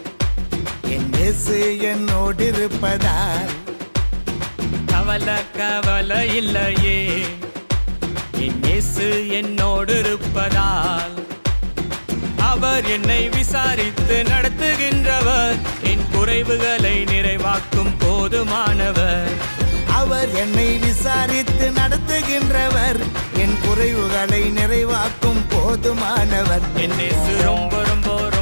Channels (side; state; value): both; inverted; correlation -1.00